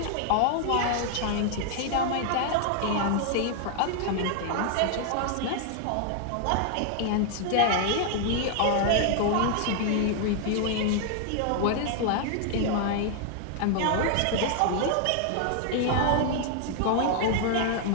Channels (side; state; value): both; different; correlation 0.00